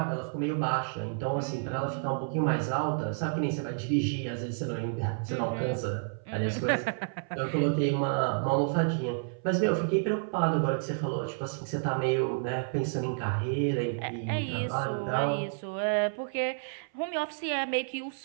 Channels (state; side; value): silent; left; 58 dB below the other